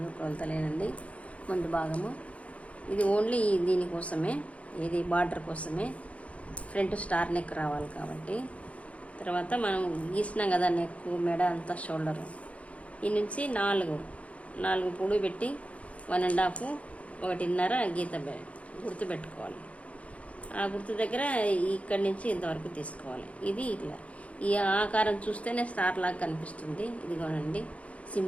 కొలతలేనండి ముందు భాగము. ఇది ఓన్లీ దీనికోసమే, ఇది బార్డర్ కోసమే. ఫ్రంట్ స్టార్ నెక్ రావాలి కాబట్టి. తర్వాత మనం గీసినాం కదా నెక్, మెడ అంతా షోల్డరు. ఈ నుంచి నాలుగు పొడి పెట్టి 1.5 1.5 గీత గుర్తు పెట్టుకోవాలి. ఆ గుర్తు దగ్గర ఇక్కడి నుంచి ఇంతవరకు తీసుకోవాలి. ఇది ఇట్లా ఈ ఆకారం చూస్తేనే స్టార్ లాగా కనిపిస్తుంది. ఇదిగోనండి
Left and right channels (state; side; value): late; right; 0.065 ms